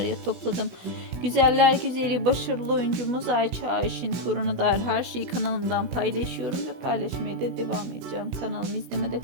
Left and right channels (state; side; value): late; left; 16 ms